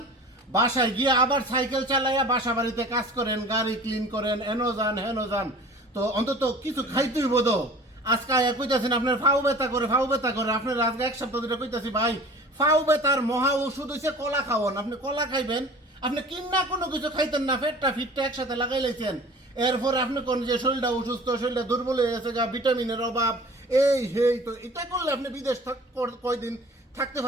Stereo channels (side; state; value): both; normal; correlation 0.43